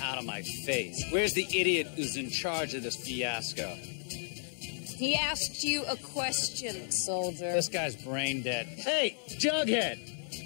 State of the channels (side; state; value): right; silent; 56 dB below the other